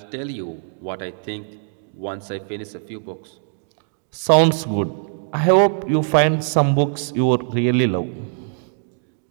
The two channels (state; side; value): silent; left; digital silence